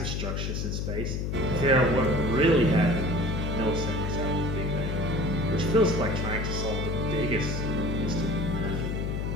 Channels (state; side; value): noise; left; hum, 1 dB below the sound